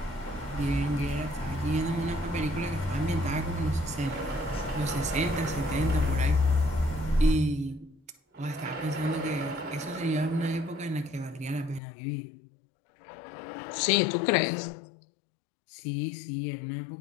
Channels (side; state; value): right; drops out; at 11.8 s